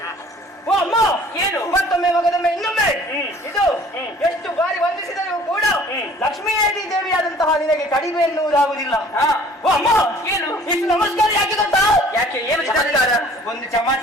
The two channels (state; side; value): normal; both; correlation 0.52